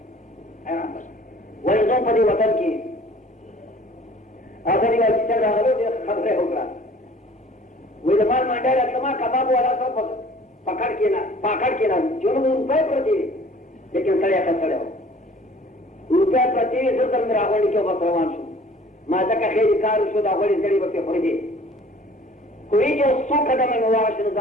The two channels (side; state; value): both; normal; correlation 0.50